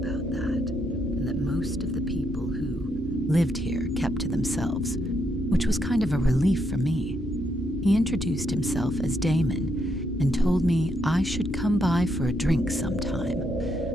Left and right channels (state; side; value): normal; both; correlation 0.77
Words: that, and that most of the people who lived here kept to themselves, which was kind of a relief for me. He introduced himself as Damon and told me I should come by for a drink sometime.